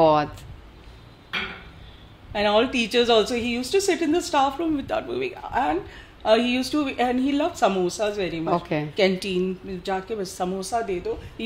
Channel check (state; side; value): identical; both; correlation 1.00